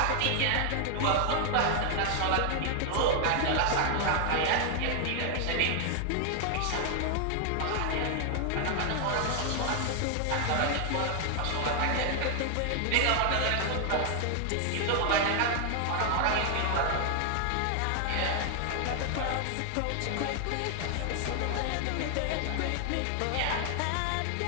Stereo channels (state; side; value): different; both; correlation 0.00